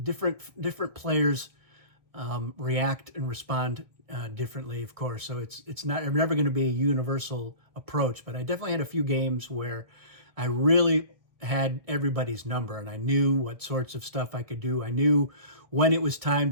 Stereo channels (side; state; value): left; late; 1.6 ms